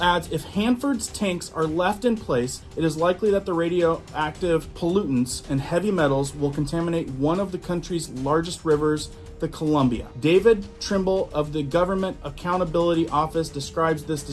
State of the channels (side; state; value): both; identical; correlation 1.00